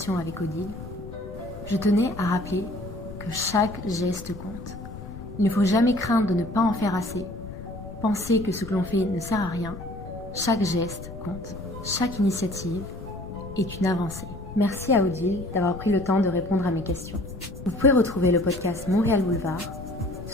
avec Odile, je tenais à rappeler que chaque geste compte. Il ne faut jamais craindre de ne pas en faire assez, penser que ce que l'on fait ne sert à rien. Chaque geste compte. Chaque initiative est une avancée. Merci à Odile d'avoir pris le temps de répondre à mes questions. Vous pouvez retrouver le podcast Montréal Boulevard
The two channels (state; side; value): noise; left; rumble, 13 dB below the sound